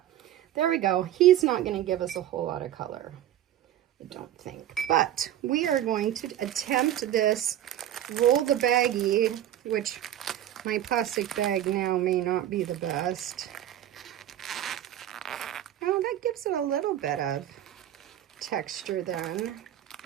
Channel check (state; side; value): quieter; left; 12.0 dB